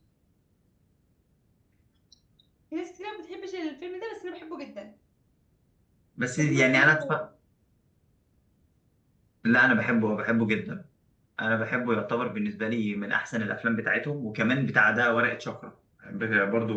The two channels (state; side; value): identical; both; correlation 1.00